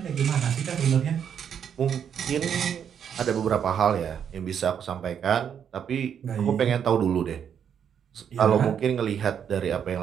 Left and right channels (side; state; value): left; quieter; 8.2 dB